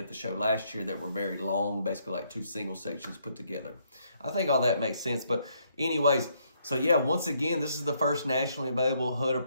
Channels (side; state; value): both; inverted; correlation -0.72